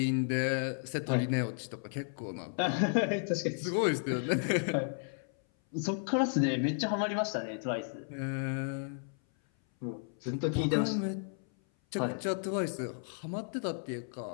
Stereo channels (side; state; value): right; silent; 55 dB below the other